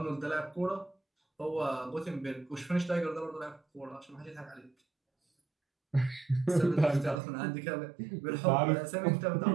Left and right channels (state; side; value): drops out; left; at 7.2 s